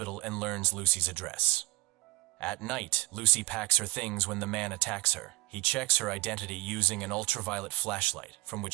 and learns Lucy's address. At night, Lucy packs her things when the man attacks her. He checks her identity using an ultraviolet flashlight, from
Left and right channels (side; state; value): left; quieter; 22.1 dB